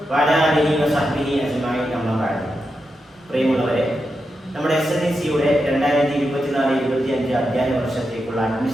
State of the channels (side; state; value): both; normal; correlation 0.87